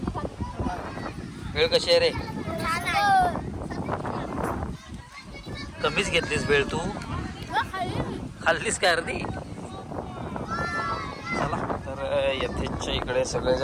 भेळ कशी आहे रे? कमीच घेतलीस भेळ तू? खाल्लीस काय अर्धी? चला तर यथेच्या इकडे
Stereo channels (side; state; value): both; identical; correlation 1.00